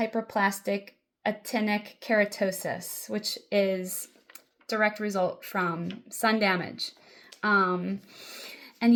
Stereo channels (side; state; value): both; identical; correlation 1.00